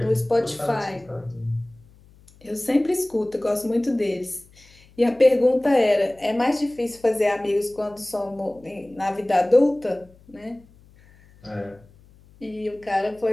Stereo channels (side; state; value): left; noise; hum, 27 dB below the sound